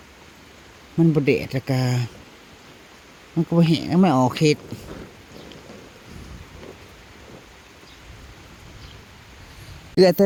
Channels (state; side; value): identical; both; correlation 1.00